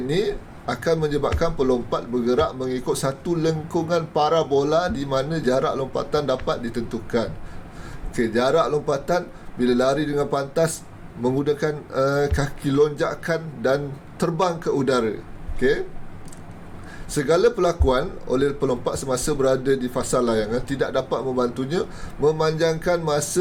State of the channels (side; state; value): both; identical; correlation 1.00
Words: akan menyebabkan pelompat bergerak mengikut satu lengkungan parabola di mana jarak lompatan dapat ditentukan. Okey, jarak lompatan bila lari dengan pantas menggunakan kaki lonjakan dan terbang ke udara. Okey, segala perlakuan oleh pelompat semasa berada di fasa layangan tidak dapat membantunya memanjangkan